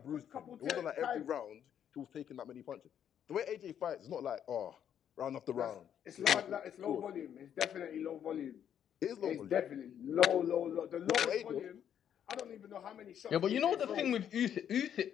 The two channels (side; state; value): right; quieter; 9.3 dB